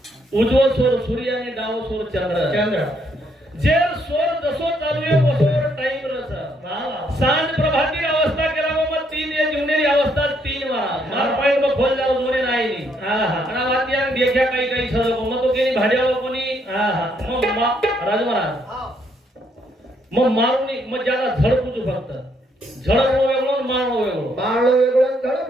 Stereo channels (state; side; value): normal; both; correlation 0.72